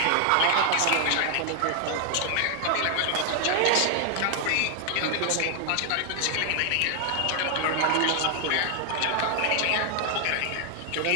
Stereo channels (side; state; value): both; different; correlation 0.00